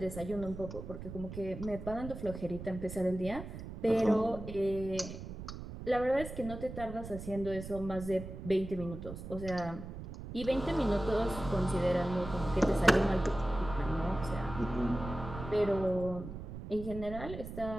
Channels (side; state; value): right; noise; rumble, 10 dB below the sound